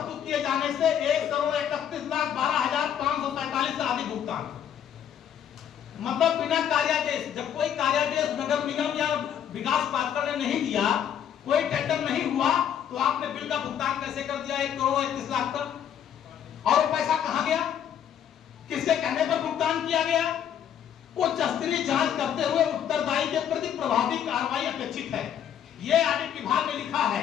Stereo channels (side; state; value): right; quieter; 9.3 dB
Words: किए जाने से 1,31,12,547 से अधिक भुगतान। मतलब बिना कार्यादेश, जब कोई कार्यादेश नगर निगम या विकास प्राधिकरण ने नहीं दिया, कोई टेंडर नहीं हुआ, तो आपने बिल का भुगतान कैसे कर दिया 1,31,00,000 तक? और वो पैसा कहां गया? किसके कहने पर भुगतान किया गया? उच्च स्तरीय जांच करते हुए उत्तरदायी के प्रति प्रभावी कार्रवाई अपेक्षित है। ये ऑडिट विभाग ने लिखा